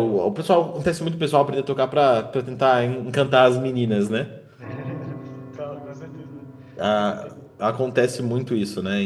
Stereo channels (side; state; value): both; identical; correlation 1.00